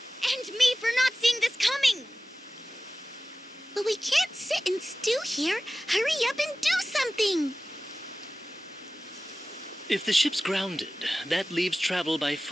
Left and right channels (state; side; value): normal; both; correlation 0.96